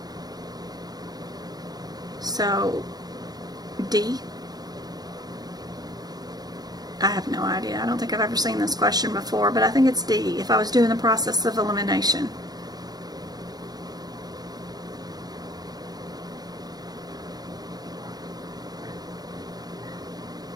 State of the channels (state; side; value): late; left; 0.19 ms